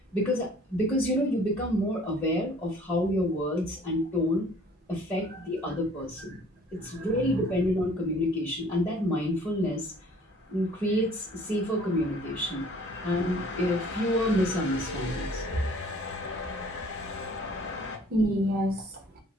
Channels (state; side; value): normal; both; correlation 0.54